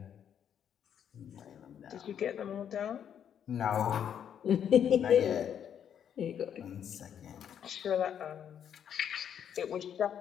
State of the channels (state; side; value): quieter; right; 8.9 dB